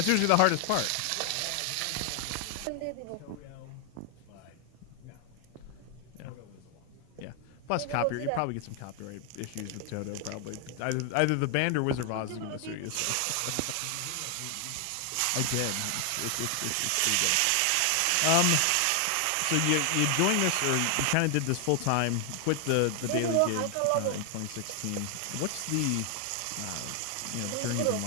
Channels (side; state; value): both; different; correlation 0.00